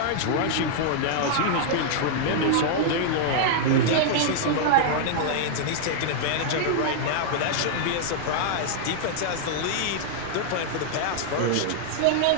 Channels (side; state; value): both; different; correlation -0.01